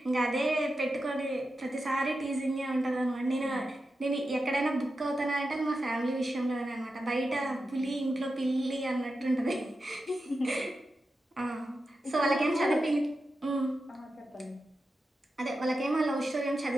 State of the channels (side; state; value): both; normal; correlation 0.90